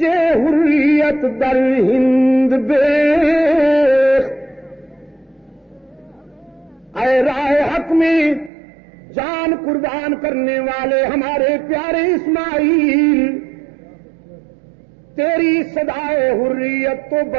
حریت در ہند بیخت، اے راہ حق میں جان قربان کرنے والے ہمارے پیارے اسماعیل، تیری صدائے حریت تو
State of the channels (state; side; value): drops out; left; at 8.5 s